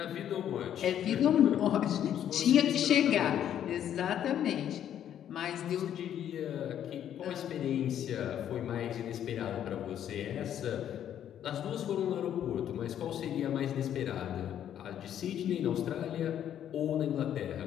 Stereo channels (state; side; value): quieter; right; 10.2 dB